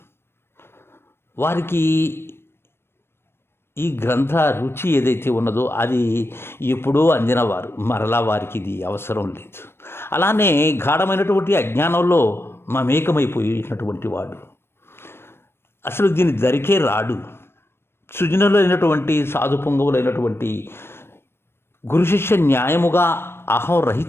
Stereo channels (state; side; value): late; right; 0.12 ms